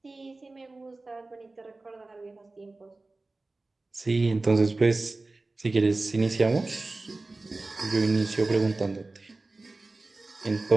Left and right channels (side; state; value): left; quieter; 3.3 dB